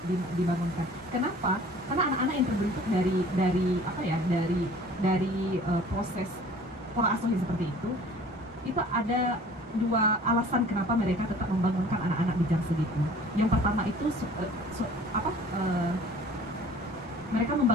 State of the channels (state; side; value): normal; both; correlation 0.49